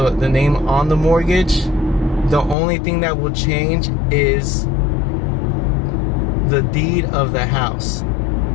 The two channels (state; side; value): drops out; right; at 2.6 s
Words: name on the mortgage. The only thing that will change is the deed of the house